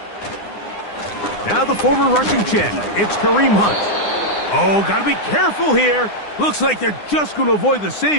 Now the former rushing champ, it's Kareem Hunt. Oh, got to be careful here. Looks like they're just going to avoid the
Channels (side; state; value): right; late; 9.8 ms